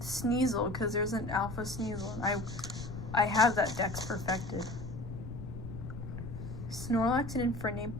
because there's an Alpha Sneasel, and I have that Dex perfected. Snorlax and Infernape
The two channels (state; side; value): noise; left; rumble, 8 dB below the sound